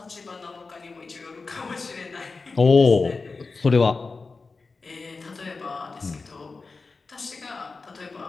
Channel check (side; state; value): right; quieter; 4.1 dB